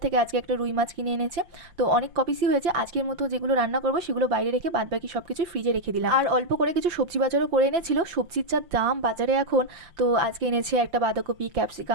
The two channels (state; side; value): late; left; 5.9 ms